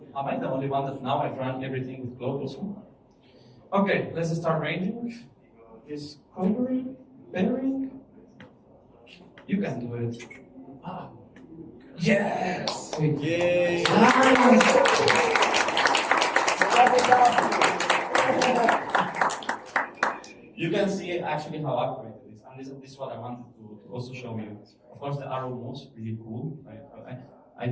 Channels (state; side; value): identical; both; correlation 1.00